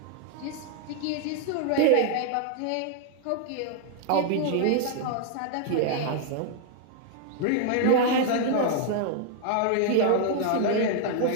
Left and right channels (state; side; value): different; both; correlation 0.00